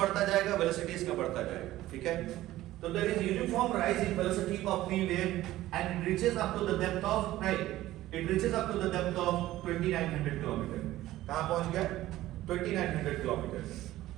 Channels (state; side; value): quieter; left; 15.5 dB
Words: जाएगा velocity इसका बढ़ता जाएगा, ठीक है? तो there is uniform rise in velocity of P wave and it reaches up to the depth of, right? It reaches up to the depth of 2900 kilometers. कहाँ पहुंच गया? 2900 kilometers.